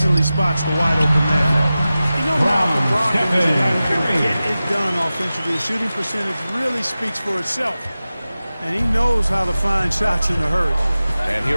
spots the wide open man. You know, Malcolm Brogdon is a guy who can get it done offensively. The shooting percentage really speaks for itself. And he knows how to find shots in a hurry. And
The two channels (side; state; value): both; inverted; correlation -0.95